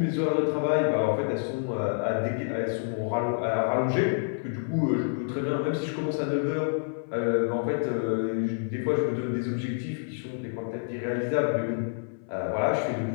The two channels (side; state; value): right; silent; 59 dB below the other